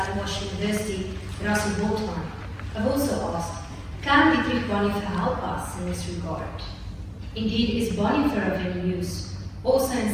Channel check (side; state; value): both; identical; correlation 1.00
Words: University, Russell Boltman, have also asked, can Dietrich Bonhoeffer help us in this regard? Indeed, is Bonhoeffer of any use, also